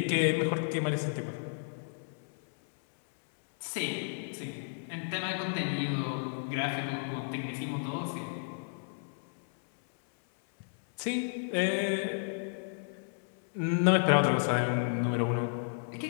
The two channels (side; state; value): right; silent; 56 dB below the other